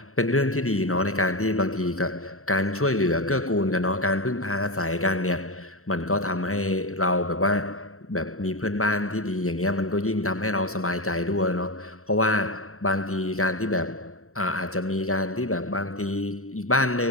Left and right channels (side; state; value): right; late; 0.63 ms